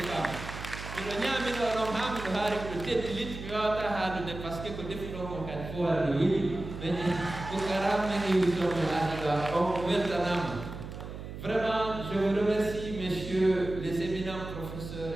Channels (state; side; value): noise; right; hum, 10 dB below the sound